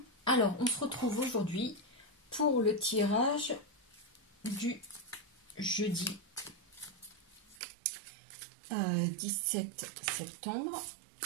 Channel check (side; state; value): left; drops out; at 7.6 s